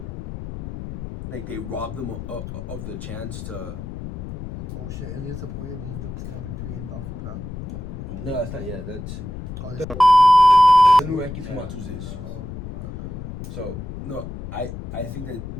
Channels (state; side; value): noise; left; rumble, 8 dB below the sound